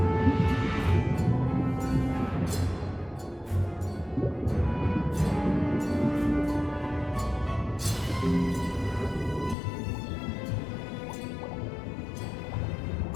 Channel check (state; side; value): drops out; right; at 9.6 s